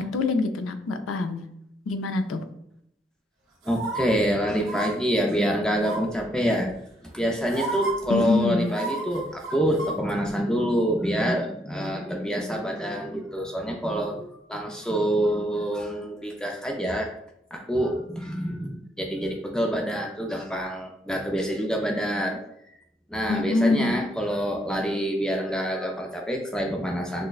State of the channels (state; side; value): normal; both; correlation 0.73